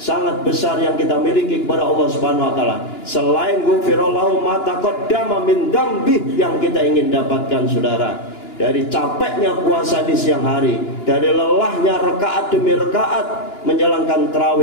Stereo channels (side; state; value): right; late; 2.9 ms